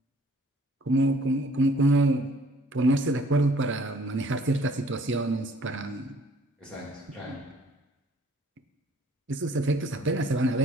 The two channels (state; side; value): normal; both; correlation 0.58